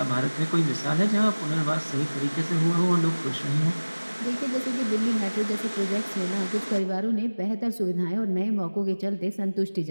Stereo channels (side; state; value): both; inverted; correlation -1.00